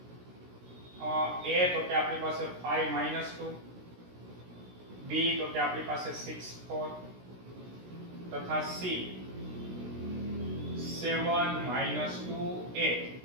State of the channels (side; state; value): left; late; 16 ms